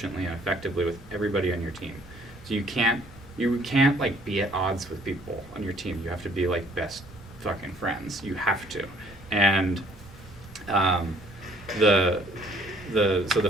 and effectively with everybody on your team. So you can't like be at odds with people on your team. You have to be like best fucking friends. You have to. And so the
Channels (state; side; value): normal; both; correlation 0.59